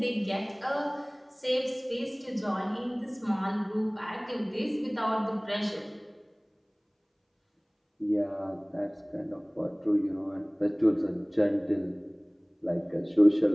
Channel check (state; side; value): identical; both; correlation 1.00